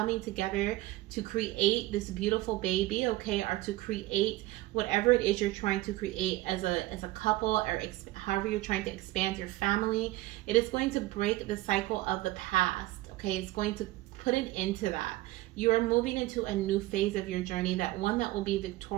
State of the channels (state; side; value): quieter; left; 18.0 dB